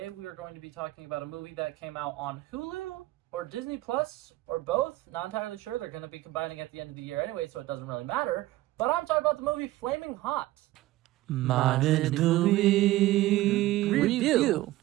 we are going to be talking about a movie that came out on Hulu or Disney Plus or both. Not entirely sure. They're going to be combining at the end of the year anyway, so it doesn't really matter. But I'm talking about the movie Flaming Hot. Modern movie review.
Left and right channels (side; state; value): left; quieter; 16.8 dB